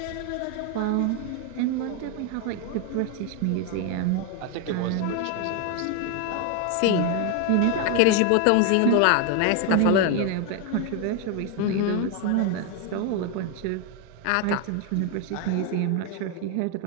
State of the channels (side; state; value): both; different; correlation 0.01